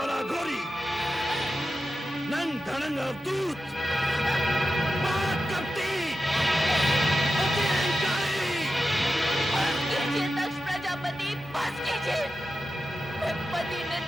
घोरी, नंग धड़ंग अवधूत, दक्ष प्रजापति, बस कीजिए। मैं पति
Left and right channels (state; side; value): normal; both; correlation 0.91